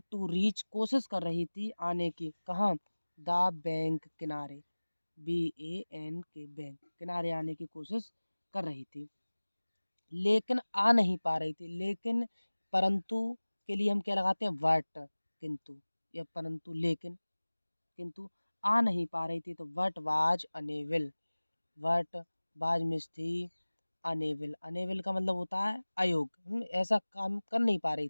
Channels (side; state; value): both; inverted; correlation -1.00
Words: टू रीच, कोशिश कर रही थी आने की, कहाँ? द बैंक, किनारे, BANK, बैंक, किनारे आने की कोशिश कर रही थी, लेकिन आ नहीं पा रही थी। लेकिन, परंतु के लिए हम क्या लगाते हैं? बट, किंतु, या परंतु, लेकिन, किंतु आ नहीं पा रही थी। तो what was unable, what was miss थी, अनेबल। अनेबल का मतलब होता है अयोग्य, ऐसा काम कर नहीं पा रही